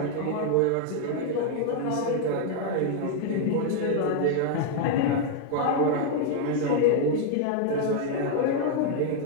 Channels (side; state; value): both; different; correlation 0.00